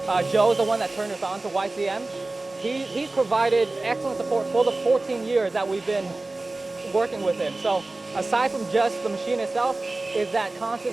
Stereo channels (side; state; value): left; quieter; 3.1 dB